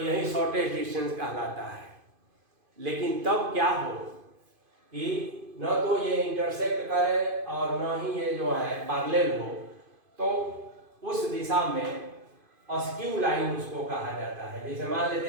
यही शॉर्टेस्ट डिस्टेंस कहलाता है। लेकिन तब क्या हो कि न तो ये इंटरसेक्ट करे और न ही ये जो है पैरेलल हो, तो उस दिशा में अस्क्यू लाइन उसको कहा जाता है। जैसे मान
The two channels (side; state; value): left; late; 2.5 ms